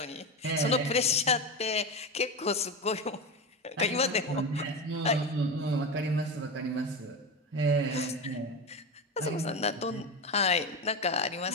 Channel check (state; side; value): normal; both; correlation 0.19